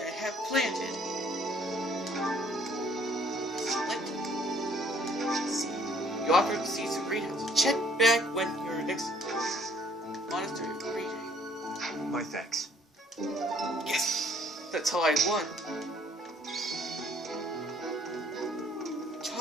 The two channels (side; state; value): both; normal; correlation 0.60